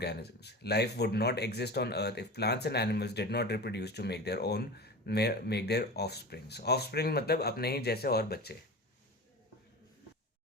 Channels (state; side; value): normal; both; correlation 0.31